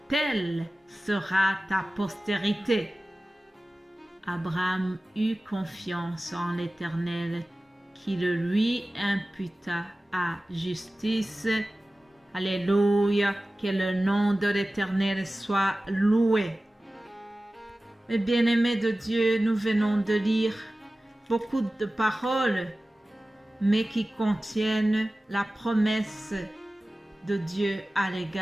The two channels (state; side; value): normal; both; correlation 0.96